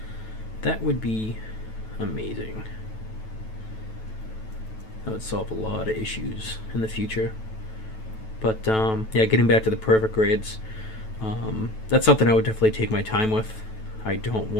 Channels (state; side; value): late; right; 9.2 ms